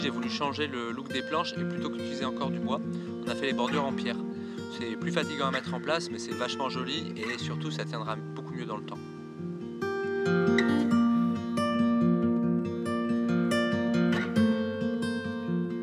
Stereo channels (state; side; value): identical; both; correlation 1.00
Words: j'ai voulu changer le look des planches et plutôt qu'utiliser encore du bois, on a fait les bordures en pierre. C'est plus fatigant à mettre en place, mais c'est vachement joli et surtout ça tiendra beaucoup mieux dans le temps.